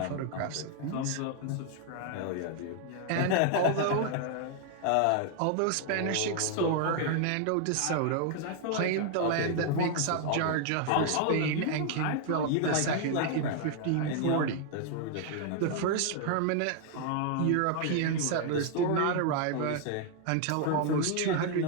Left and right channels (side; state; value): both; different; correlation 0.00